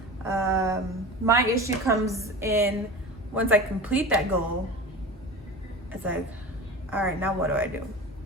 My issue comes in once I complete that goal. It's like, all right, now what do I do?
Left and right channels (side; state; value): both; normal; correlation 0.32